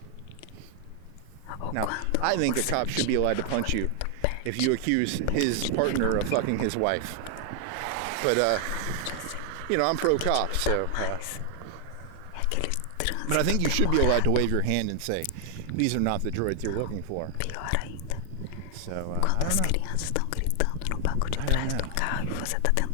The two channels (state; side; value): different; both; correlation 0.00